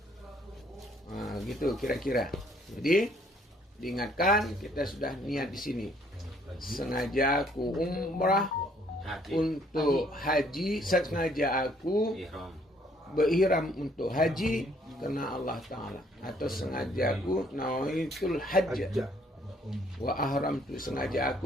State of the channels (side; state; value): both; normal; correlation 0.64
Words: Gitu kira-kira. Jadi diingatkan kita sudah niat di sini. Sengaja aku umrah untuk haji, sengaja aku berihram untuk haji karena Allah Ta'ala, atau sengaja aku nawaitul hajj wa ahram, tu sengaja